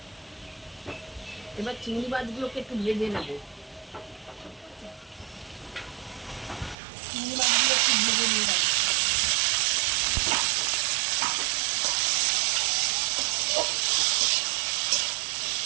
এবার চিংড়ি মাছগুলোকে একটু ভেজে নেব। চিংড়ি মাছগুলো একটু ভেজে নিলাম।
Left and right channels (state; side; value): drops out; left; at 6.8 s